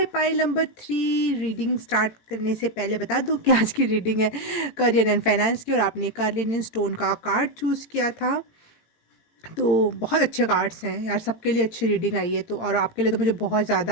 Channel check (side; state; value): right; late; 18 ms